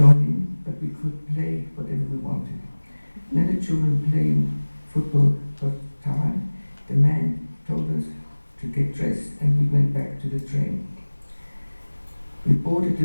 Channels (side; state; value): both; inverted; correlation -1.00